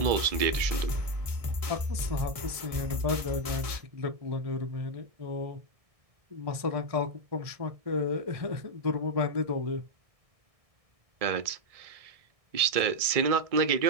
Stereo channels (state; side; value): late; left; 1.6 ms